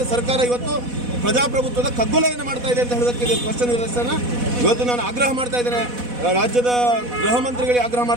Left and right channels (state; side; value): late; left; 4.1 ms